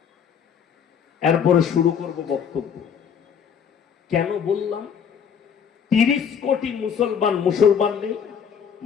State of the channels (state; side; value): quieter; right; 7.4 dB